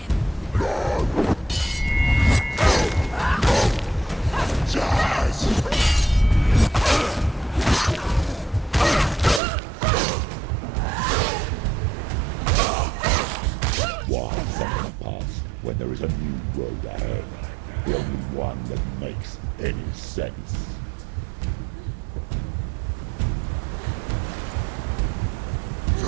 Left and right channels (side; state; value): left; drops out; at 9.4 s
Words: when there is a new road ahead, the only one that makes any sense.